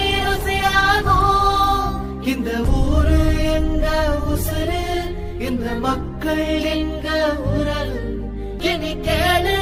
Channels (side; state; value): both; identical; correlation 1.00